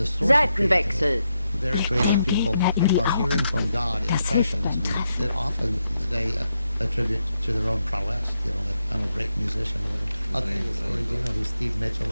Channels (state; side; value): inverted; both; correlation -0.83